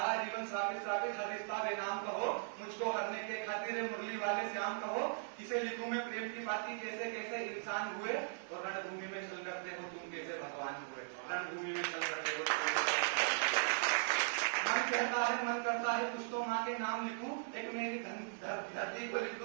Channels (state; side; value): silent; left; digital silence